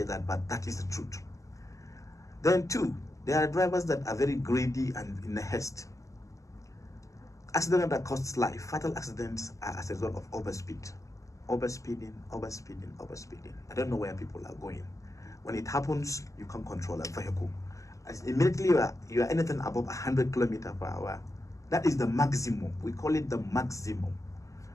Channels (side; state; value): right; late; 0.15 ms